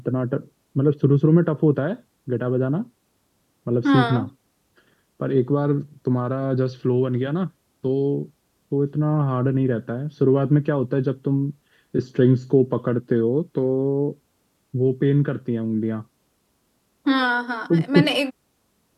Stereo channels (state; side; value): identical; both; correlation 1.00